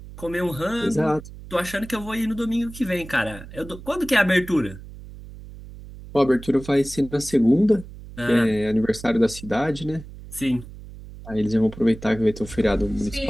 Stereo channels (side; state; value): right; noise; hum, 15 dB below the sound